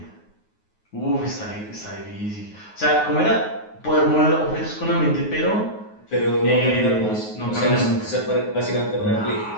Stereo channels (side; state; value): right; late; 9.4 ms